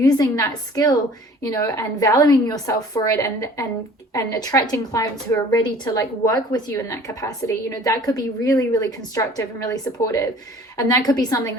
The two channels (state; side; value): normal; both; correlation 0.49